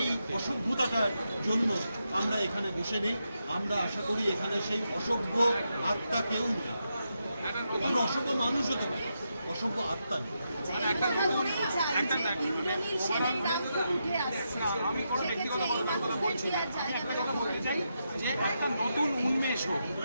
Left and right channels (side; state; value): both; inverted; correlation -0.84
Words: অসভ্যতাটার জন্য আমরা এখানে বসে নেই। আমরা আশা করি এখানে সেই অসভ্য আত্মা কেউ নেই। আমরা অসভ্য মানুষ হতে পারি, অসভ্য আত্মা নেই। আমি কোনো ব্যক্তিগত কথা বলছি না, আমি একটা কথা বলতে চাই যে একটা নতুন উন্মেষ হোক,